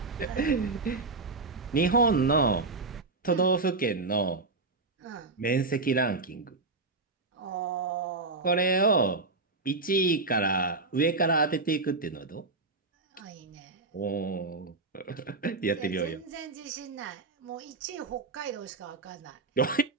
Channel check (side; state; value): left; quieter; 3.7 dB